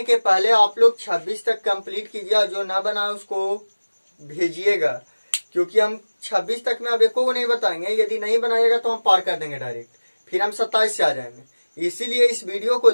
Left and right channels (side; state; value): both; inverted; correlation -1.00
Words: के पहले आप लोग 26 तक कंप्लीट कीजिए, जो ना बना उसको भेजिएगा, क्योंकि हम 26 तक में अब एको को नहीं बताएंगे। यदि नहीं बनाइएगा तो हम पार कर देंगे डायरेक्ट, फिर हम 27 से आ जाएंगे। इसीलिए इस वीडियो को